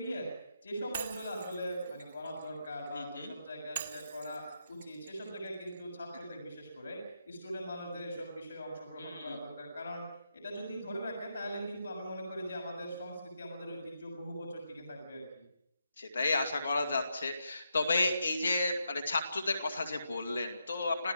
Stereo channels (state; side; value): inverted; both; correlation -0.82